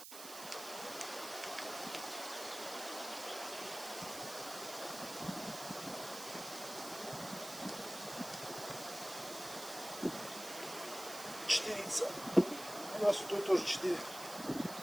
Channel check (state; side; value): noise; right; hiss, 11 dB below the sound